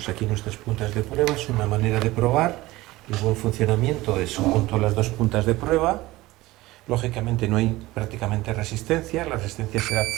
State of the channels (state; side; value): quieter; left; 18.8 dB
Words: aquí nuestras puntas de prueba. Es una manera de probar el buen funcionamiento de junto a las dos puntas de prueba. Lógicamente no hay prácticamente resistencia, la resistencia será